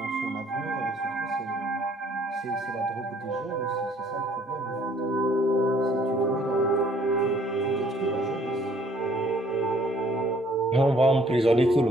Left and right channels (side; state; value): both; normal; correlation 0.60